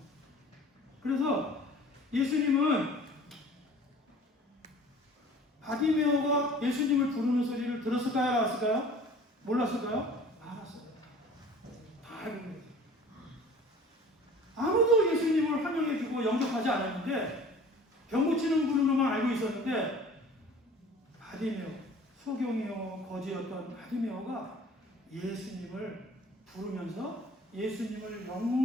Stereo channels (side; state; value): both; normal; correlation 0.46